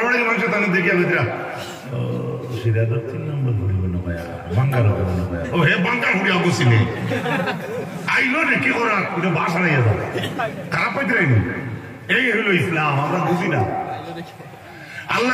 মানুষ তাহলে দেখিয়া বেতরা সেটা তো 3 নম্বর ফুড়িব না ভাইয়া বাঙ্গার হবে না ভাইয়া ও হে বাঙ্গার ফুড়ি আগুছি নেই আইলো রে কি করার ওটা বাসা নিয়ে যাবে খারাপ পাইতে রাইনি এই হলো ইসলাম আমরা বুঝি না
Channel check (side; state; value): both; identical; correlation 1.00